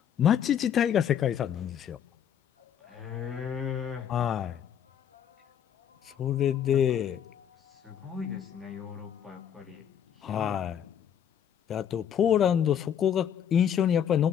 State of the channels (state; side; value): quieter; right; 9.0 dB